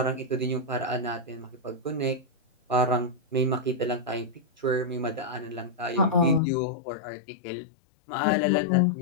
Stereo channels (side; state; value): right; drops out; at 6.4 s